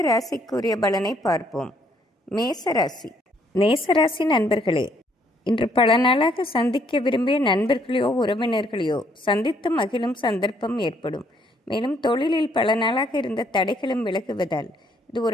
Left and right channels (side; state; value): both; normal; correlation 0.68